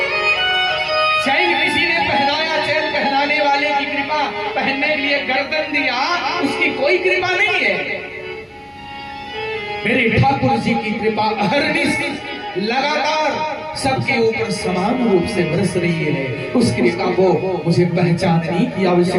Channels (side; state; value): both; identical; correlation 1.00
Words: चैन किसी ने पहनाया, चैन पहनाने वाले की कृपा, पहनने के लिए गर्दन दिया उसकी कोई कृपा नहीं है। मेरे ठाकुर जी की कृपा अहरनिश लगातार सबके ऊपर समान रूप से बरस रही है। उस कृपा को मुझे पहचानने की